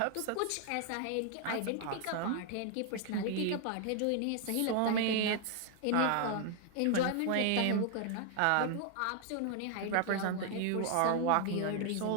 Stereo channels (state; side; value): different; both; correlation 0.00